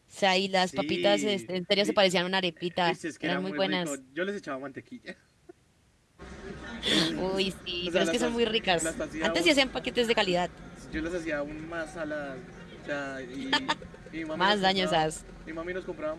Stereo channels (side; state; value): both; identical; correlation 1.00